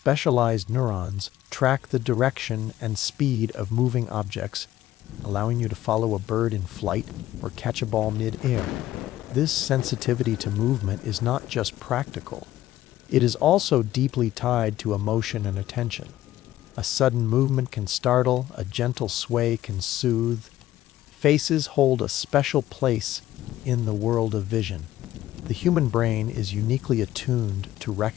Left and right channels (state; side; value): quieter; right; 14.1 dB